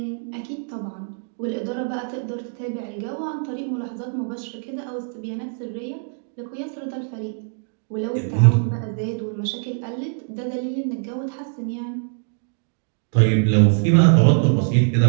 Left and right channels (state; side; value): silent; left; digital silence